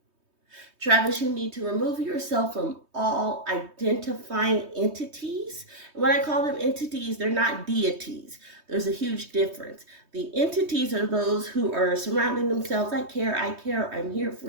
Travis, you need to remove yourself from all identifying entities. When I call them entities, they're not deities. There's a huge difference. The entities are those who are surrounding themselves. I care, I'm here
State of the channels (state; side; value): late; left; 3.2 ms